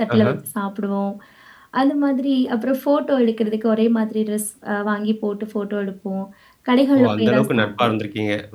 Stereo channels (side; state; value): both; identical; correlation 1.00